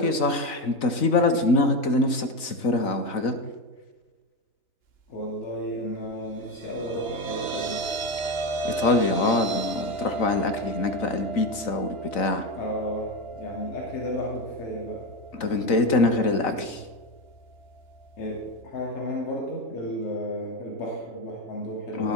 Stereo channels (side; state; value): right; late; 3.9 ms